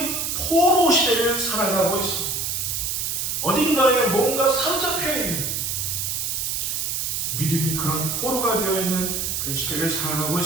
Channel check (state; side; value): noise; right; hiss, 1 dB below the sound